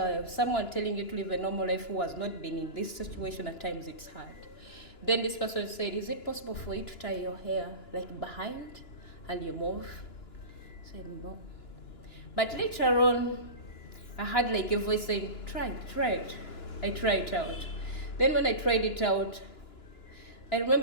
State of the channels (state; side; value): late; right; 2.9 ms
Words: someone telling you to live a normal life who has not been in this situation, at times it's hard. Then this person said, is it possible for you to tie your hair like behind and you move? I said, no. But later on, I had like a voice saying, try it. I tried it out. Then when I tried it out, I